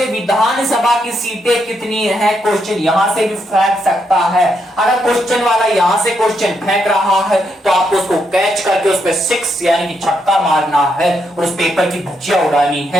विधानसभा की सीटें कितनी है, क्वेश्चन यहां से भी फेंक सकता है। अगर क्वेश्चन वाला यहां से क्वेश्चन फेंक रहा है तो आपको उसको कैच करके उस पर 6 यानी कि छक्का मारना है और उस पेपर की धज्जियां उड़ानी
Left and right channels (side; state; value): both; normal; correlation 0.79